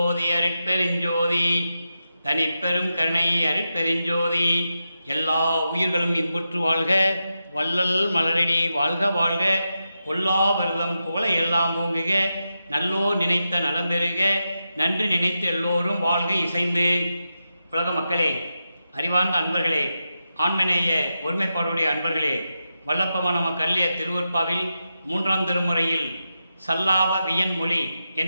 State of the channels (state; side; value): inverted; both; correlation -0.88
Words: அருட்பெருஞ்சோதி தனிப்பெரும் கருணை அருட்பெருஞ்சோதி. எல்லா உயிர்களும் இன்புற்று வாழ்க, வள்ளல் மலரடி வாழ்க வாழ்க, பொல்லா விரதம் புகழை எல்லாம் ஓங்குக, நல்லோர் நினைத்த நலம் பெறுக, நன்றி நினைத்து எல்லோரும் வாழ்க இசைந்து. உலக மக்களே, அறிவார்ந்த அன்பர்களே, ஆண்மநேய ஒருமைப்பாடுடைய அன்பர்களே, வல்லப்பமான நம கல்லிய திருவற்பாவில் 3ஆம் திருமுறையில் சல்லாப வியன் மொழி